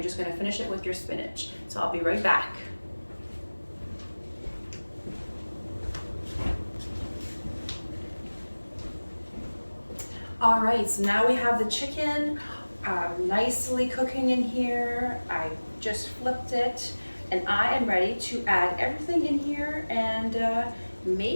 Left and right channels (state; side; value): inverted; both; correlation -1.00